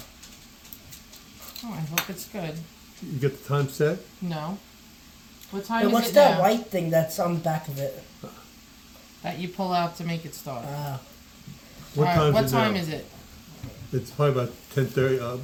Oh, I hope it's good. You get the time set. No. What time Hey, is what's it that now? white thing that's on the back of it? That you pull out to make it start. What All right, time what is it time now? is it? It's probably about 10:30,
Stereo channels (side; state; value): both; identical; correlation 1.00